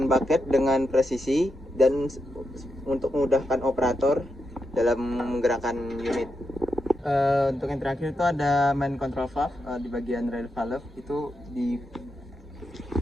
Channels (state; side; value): normal; both; correlation 0.85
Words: bucket dengan presisi, dan untuk memudahkan operator dalam menggerakkan unit. Untuk yang terakhir itu ada main control valve di bagian rail valve, itu di